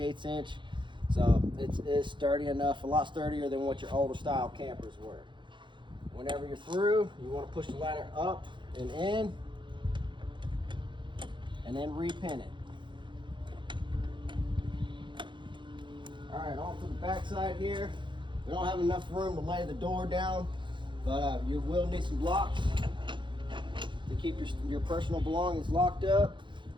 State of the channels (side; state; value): left; late; 0.23 ms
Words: inch. So it's sturdy enough, a lot sturdier than what your older style campers were. Whenever you're through, you want to push the ladder up and in, and then repin it. All right, on to the back side here. We don't have enough room to lay the door down, but you will need some locks to keep your personal belongings locked up.